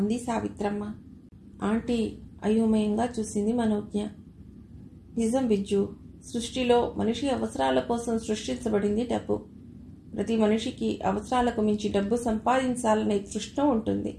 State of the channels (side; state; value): both; identical; correlation 1.00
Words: అంది సావిత్రమ్మ. ఆంటీ అయోమయంగా చూసింది మనోజ్ఞ. నిజం బిజ్జు, సృష్టిలో మనిషి అవసరాల కోసం సృష్టించబడింది డబ్బు. ప్రతి మనిషికి అవసరాలకు మించి డబ్బు సంపాదించాలనే తృష్ణ ఉంటుంది.